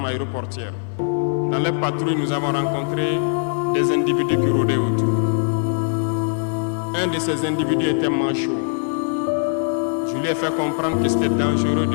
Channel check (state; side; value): silent; right; 57 dB below the other